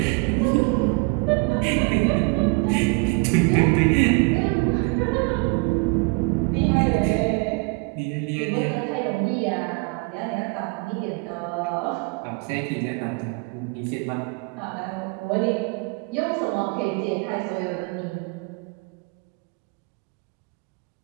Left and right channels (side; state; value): left; quieter; 30.1 dB